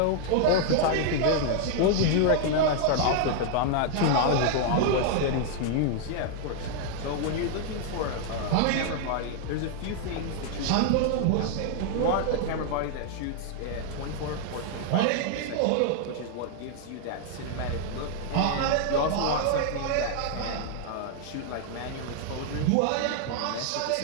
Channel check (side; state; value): both; different; correlation 0.00